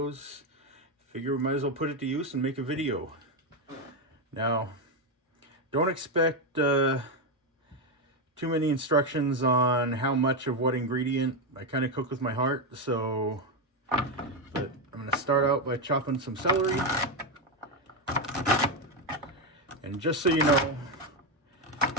figure we might as well put it to use and make a video. Now, don't expect too many instructions on how much of what ingredient. I kind of cook with my heart, so but I'm going to start out by chopping some celery. And just so you know,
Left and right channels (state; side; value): normal; both; correlation 0.08